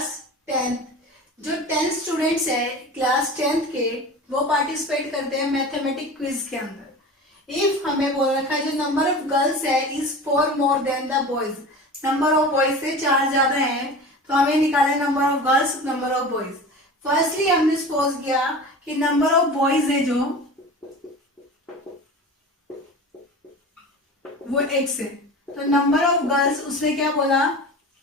10, जो 10 स्टूडेंट्स है क्लास 10th के, वो पार्टिसिपेट करते हैं मैथमेटिक क्विज के अंदर। इफ हमें बोल रखा है जो नंबर ऑफ गर्ल्स है is 4 more than the boys, number of boys से 4 ज्यादा है, तो हमें निकाले number of girls, number of boys. Firstly हमने सपोज किया कि नंबर ऑफ बॉयज है जो वो x है, तो नंबर ऑफ गर्ल्स उसने क्या बोला,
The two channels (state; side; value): normal; both; correlation 0.34